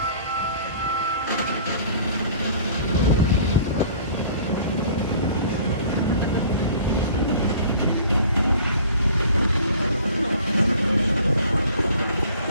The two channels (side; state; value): both; inverted; correlation -0.49